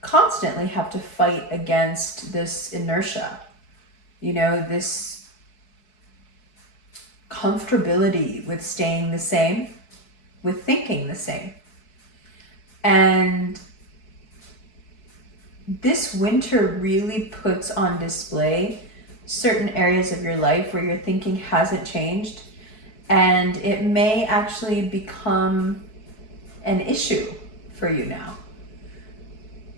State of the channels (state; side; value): late; right; 4.6 ms